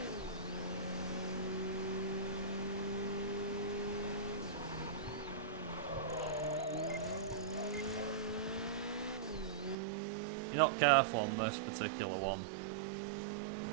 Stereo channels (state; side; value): drops out; left; at 9.8 s